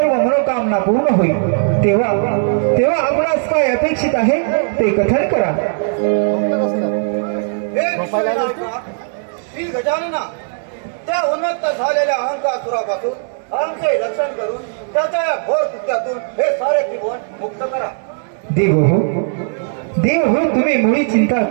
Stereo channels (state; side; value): silent; left; digital silence